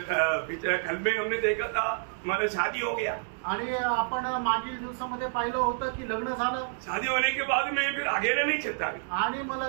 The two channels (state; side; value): silent; left; 59 dB below the other